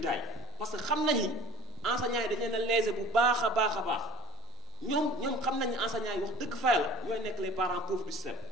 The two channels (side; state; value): both; normal; correlation 0.39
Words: yi parce que xam nañ ni enseignants yi dañ leen a léser bu baax a baax a baax ñoom xam nañ ni enseignants yi wax dëgg fa yàlla ñooy nekk les parents pauvres du système